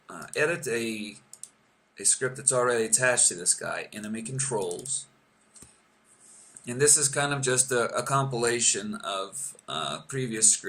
edit a script that's already attached to this guy, enemy controls. And this is kind of just a compilation of previous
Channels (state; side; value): identical; both; correlation 1.00